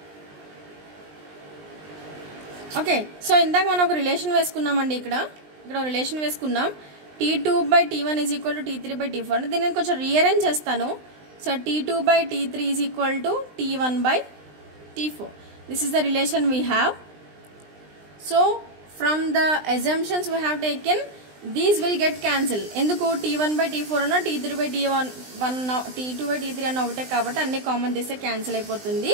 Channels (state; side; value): late; left; 20 ms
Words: Okay, so ఇందాక మనం ఒక రిలేషన్ వేసుకున్నామండి. ఇక్కడ రిలేషన్ వేసుకున్నాం. T2/T1 is equal to T3/T4 అంటే దీన్ని నేను కొంచెం రీఅరేంజ్ చేస్తాను. So T2/T3 is equal to T1/T4. This is the relation we have. So from the assumptions we have taken, these will get cancelled. ఎందుకు T1/T4 అన్న T3/T1 T2/T3 అన్న ఒకటే కాబట్టి అన్ని కామన్ తీస్తే క్యాన్సిల్ అయిపోతుంది.